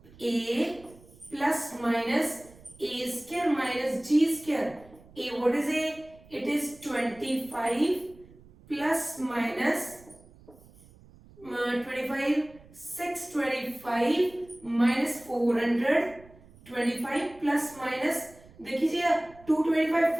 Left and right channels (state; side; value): noise; right; rumble, 24 dB below the sound